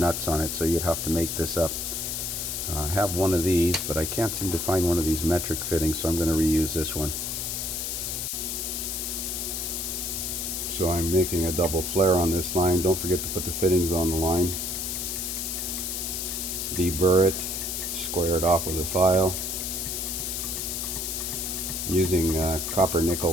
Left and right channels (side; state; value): left; noise; hiss, 3 dB below the sound